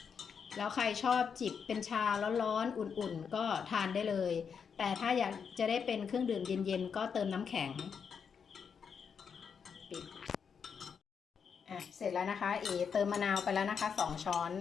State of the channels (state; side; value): quieter; right; 6.6 dB